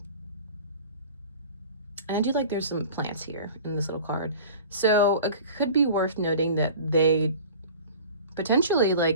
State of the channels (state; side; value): inverted; both; correlation -0.41